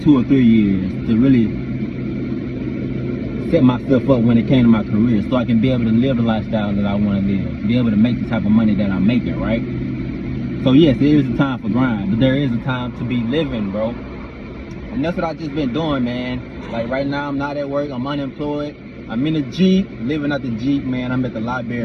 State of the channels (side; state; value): both; identical; correlation 1.00